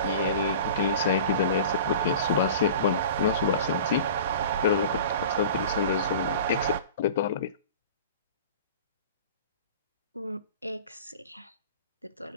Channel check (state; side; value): inverted; both; correlation -0.38